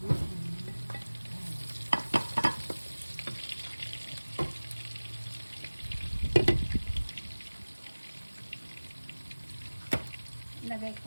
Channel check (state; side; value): inverted; both; correlation -1.00